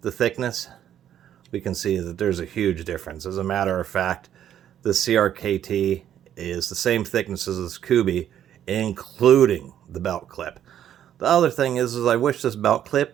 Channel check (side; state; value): left; quieter; 10.5 dB